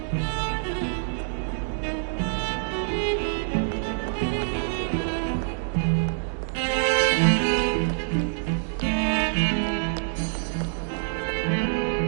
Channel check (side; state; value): left; silent; digital silence